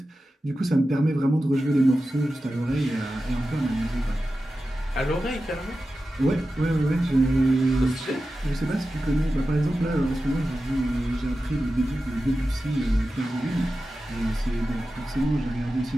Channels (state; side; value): normal; both; correlation 0.93